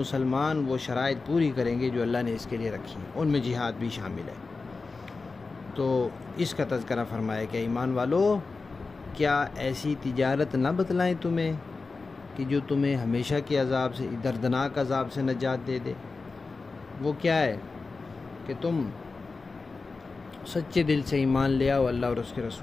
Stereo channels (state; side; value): quieter; right; 4.0 dB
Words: وہ شرائط پوری کریں گے جو اللہ نے اس کے لیے رکھی ہیں، ان میں جہاد بھی شامل ہے۔ تو اس کا تذکرہ فرمایا کہ ایمان والو، کیا ایسی تجارت نہ بتلائیں تمہیں کہ جو تمہیں ہمیشہ کے عذاب سے، دردناک عذاب سے نجات دے دے؟ وہ کیا ہے کہ تم سچے دل سے ایمان لے آؤ اللہ اور اس کے